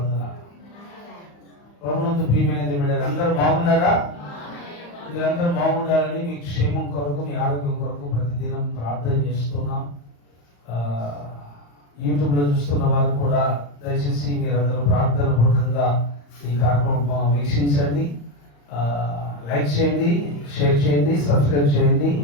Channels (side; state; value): right; late; 35 ms